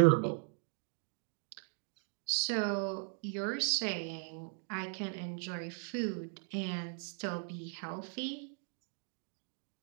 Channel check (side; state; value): left; silent; 52 dB below the other